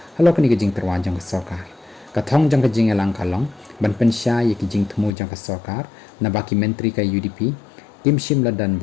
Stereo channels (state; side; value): drops out; right; at 5.1 s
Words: halo kani ka jing terwa jong ka sorkar kathong jang ka jingelang kalong ban pensya ya ki jing thmu jang ka sorkar na baki menteri ka UDP tim shim ladan